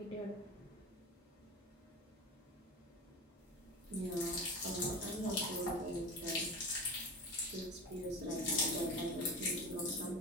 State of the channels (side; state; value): both; normal; correlation 0.30